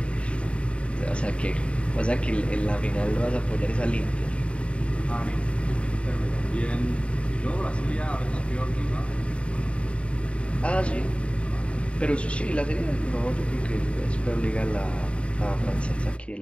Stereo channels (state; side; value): late; right; 0.060 ms